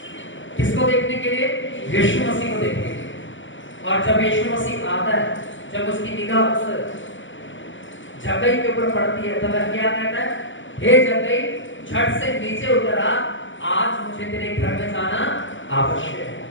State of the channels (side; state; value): right; late; 0.55 ms